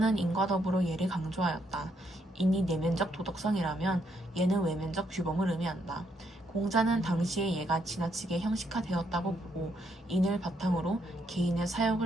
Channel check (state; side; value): normal; both; correlation 0.75